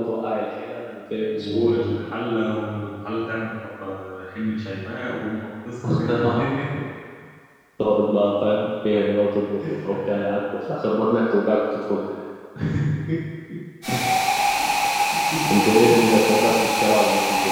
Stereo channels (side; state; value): both; identical; correlation 1.00